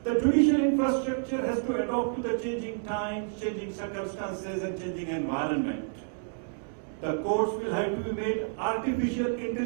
The judicial infrastructure has to adapt to the changing times, changing circumstances, and changing environment. The courts will have to be made artificial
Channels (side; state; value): left; silent; digital silence